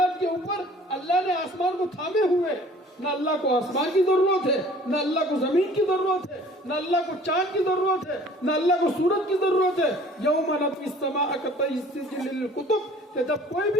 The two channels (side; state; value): both; normal; correlation 0.51